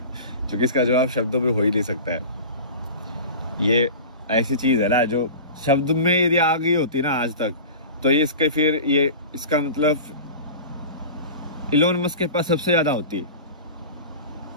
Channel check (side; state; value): both; inverted; correlation -0.35